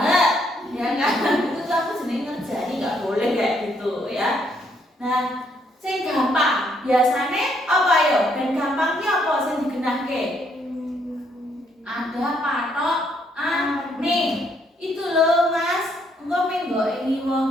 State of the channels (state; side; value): normal; both; correlation 0.71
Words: Ya kan? Itu tuh aku jenenge ngerjani enggak boleh kayak gitu ya. Nah, sing gampang biasane apa yo? Dan gampangnya apa sing digenahke? Ada patok ane. Itu loh Mas, engko menggo ini